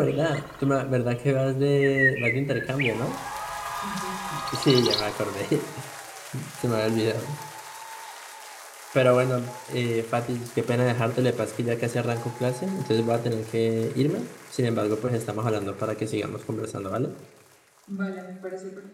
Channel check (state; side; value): identical; both; correlation 1.00